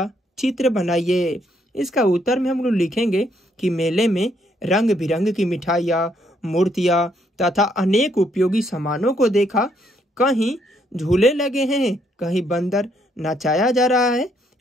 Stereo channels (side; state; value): both; normal; correlation 0.72